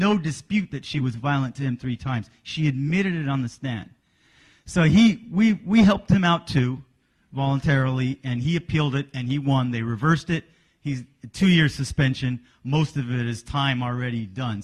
dispute that she was violent to him 3 times. She admitted it on the stand. So we helped him out too, voluntarily, and he appealed it, and he won. They reversed it. He's 2-year suspension. Most of it is time already done,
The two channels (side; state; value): both; identical; correlation 1.00